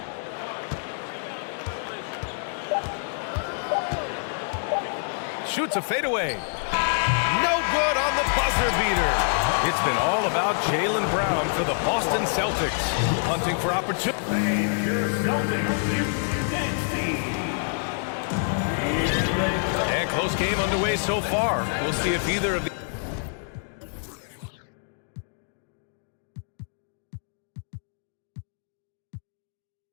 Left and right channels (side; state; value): right; silent; digital silence